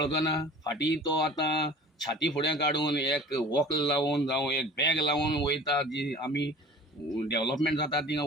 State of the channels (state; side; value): normal; both; correlation 0.44